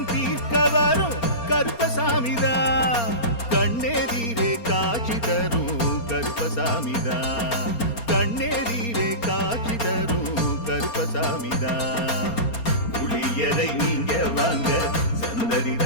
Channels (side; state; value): right; late; 4.3 ms